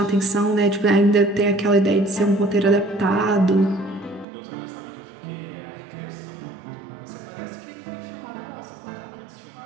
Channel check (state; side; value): drops out; left; at 4.2 s